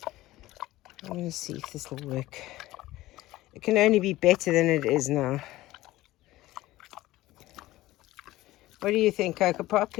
I'm going to see if this will work. It can only be better than it is now. What do you think, Coco Pop?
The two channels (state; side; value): quieter; right; 16.9 dB